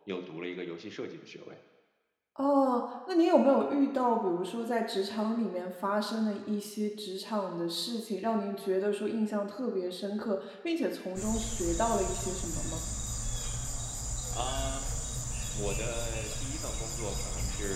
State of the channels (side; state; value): both; identical; correlation 1.00